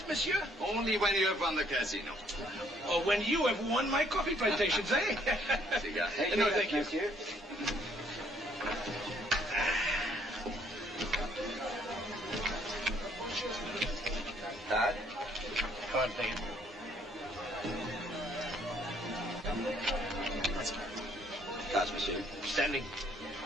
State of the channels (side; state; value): both; normal; correlation 0.65